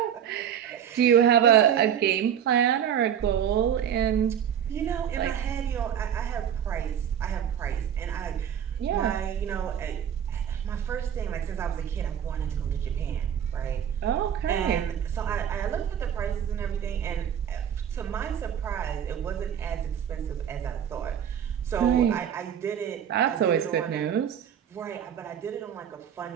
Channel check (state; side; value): quieter; left; 9.1 dB